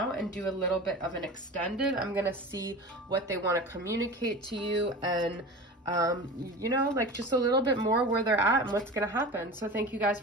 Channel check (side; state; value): both; normal; correlation 0.32